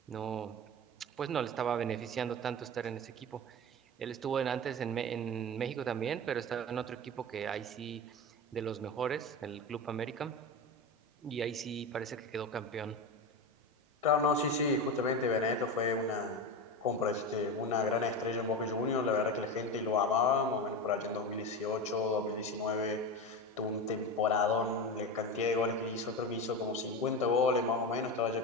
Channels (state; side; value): normal; both; correlation 0.22